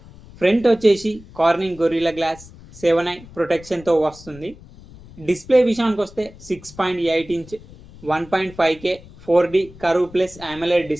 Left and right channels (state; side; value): noise; left; rumble, 20 dB below the sound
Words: ఫ్రంట్ వచ్చేసి కార్నింగ్ గొరిల్లా గ్లాస్ 7i ప్రొటెక్షన్తో వస్తుంది. డిస్ప్లే విషయానికి వస్తే 6.8 inch 1.5K 4D curve plus AMOLED